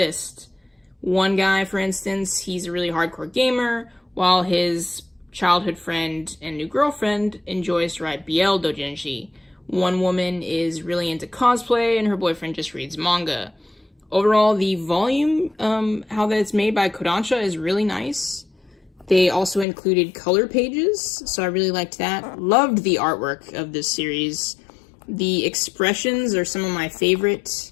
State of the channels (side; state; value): right; drops out; at 19.7 s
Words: One guy, for instance, he's a really hardcore gamer, while his childhood friend and new girlfriend enjoys to ride BL doujinshi. One woman is really into cosplay, and her boyfriend just reads manga. Overall, the volume, how that it's made by Kodansha, is really nice. They also included color pages, so I really liked that. Loved the artwork of this series. The expressions are some of my favorite